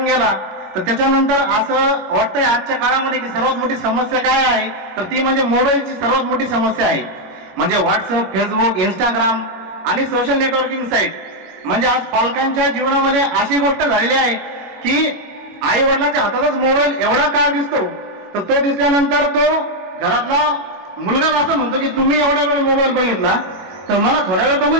गेला, तर त्याच्यानंतर असं वाटतंय आजच्या काळामध्ये की सर्वात मोठी समस्या काय आहे, तर ती म्हणजे मोबाईलची सर्वात मोठी समस्या आहे. म्हणजे व्हॉट्सअप, फेसबुक, इंस्टाग्राम आणि सोशल नेटवर्किंग साईट. म्हणजे आज पालकांच्या जीवनामध्ये अशी गोष्ट झालेली आहे की आई वडिलांच्या हातातच मोबाईल एवढा काळ दिसतो, तर तो दिसल्यानंतर तो घरातला मुलगा असं म्हणतो की तुम्ही एवढा वेळ मोबाईल बघितला तर मला थोड्या वेळ बघू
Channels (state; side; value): late; left; 21 ms